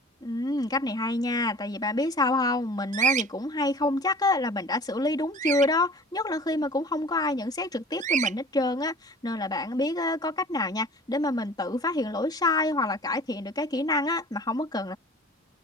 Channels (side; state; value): both; normal; correlation 0.44